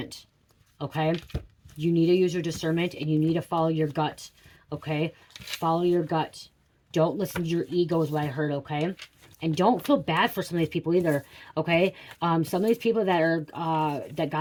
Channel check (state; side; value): identical; both; correlation 1.00